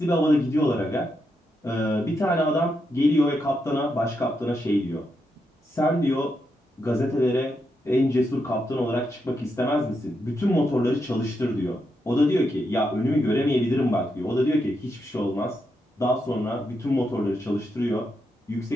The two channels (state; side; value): normal; both; correlation 0.83